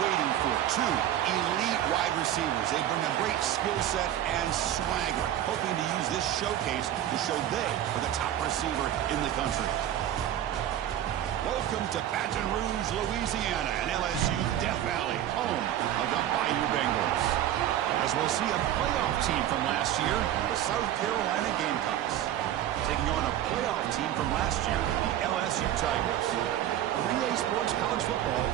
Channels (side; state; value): left; quieter; 11.7 dB